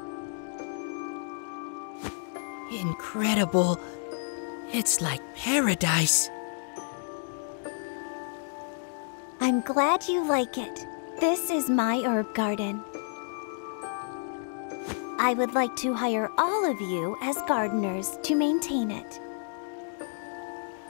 Incredible. It's like paradise. I'm glad you like it. This is my herb garden. I would like to hire all of you as gardeners to maintain it.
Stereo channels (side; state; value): right; silent; 58 dB below the other